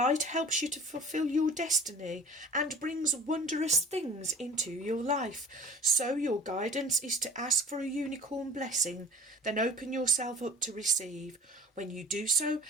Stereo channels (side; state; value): both; normal; correlation 0.44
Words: helps you to fulfill your destiny and brings wondrous things into your life. So your guidance is to ask for a unicorn blessing, then open yourself up to receive. When you do so,